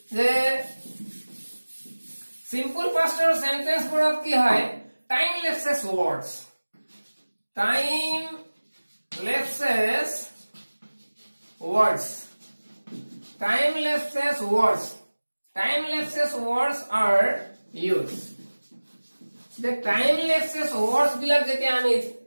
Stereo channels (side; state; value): both; inverted; correlation -1.00